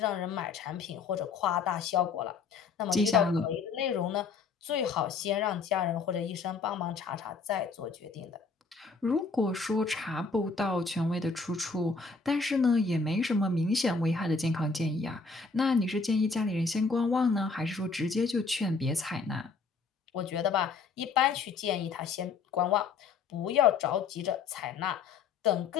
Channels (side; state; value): right; quieter; 4.8 dB